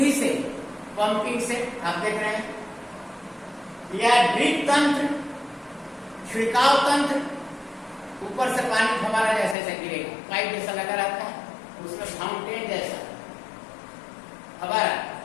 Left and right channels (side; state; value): right; drops out; at 9.6 s